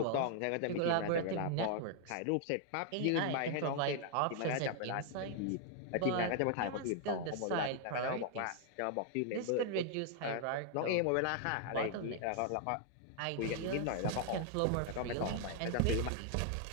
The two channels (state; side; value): different; both; correlation 0.00